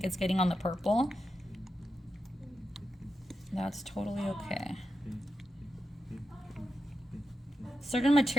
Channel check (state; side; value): normal; both; correlation 0.87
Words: is getting on the purple. That's totally okay. Certain